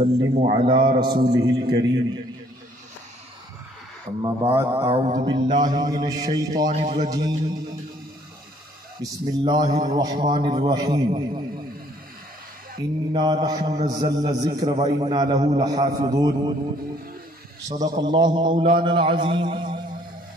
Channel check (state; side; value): normal; both; correlation 0.62